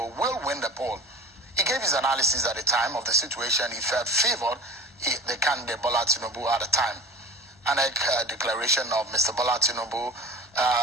will win the poll. He gave his analysis at the time of the situation. He felt favored the candidate, Bola Tinubu, at the time. And a declaration of Mr. Bola Tinubu,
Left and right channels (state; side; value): normal; both; correlation 0.36